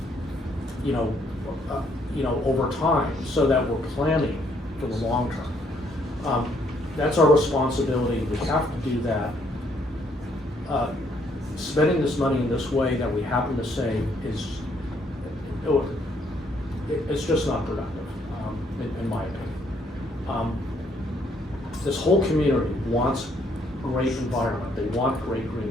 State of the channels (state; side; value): normal; both; correlation 0.69